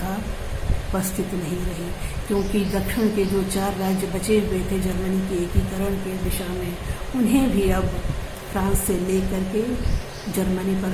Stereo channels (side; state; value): both; identical; correlation 1.00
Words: उपस्थित नहीं रही, क्योंकि दक्षिण के जो 4 राज्य बचे हुए थे जर्मनी के एकीकरण के दिशा में, उन्हें भी अब फ्रांस से लेकर के जर्मनी पर